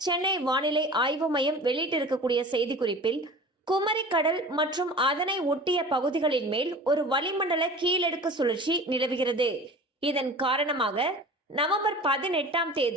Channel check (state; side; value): normal; both; correlation 0.39